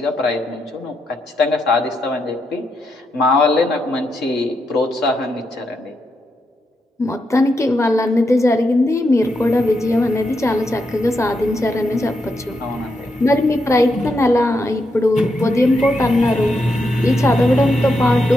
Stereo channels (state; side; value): normal; both; correlation 0.83